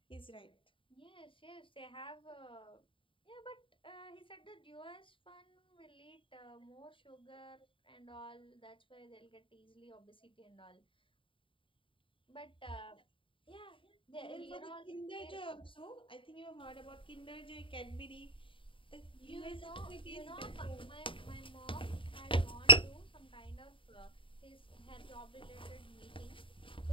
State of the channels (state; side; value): late; right; 0.25 ms